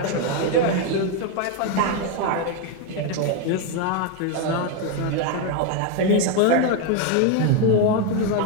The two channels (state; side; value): different; both; correlation 0.02